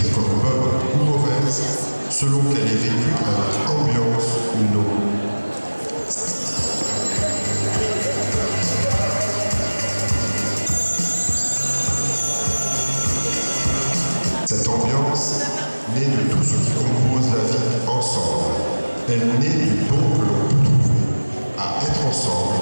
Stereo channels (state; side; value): inverted; both; correlation -1.00